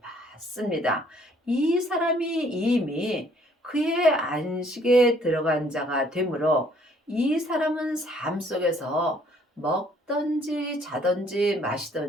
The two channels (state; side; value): normal; both; correlation 0.62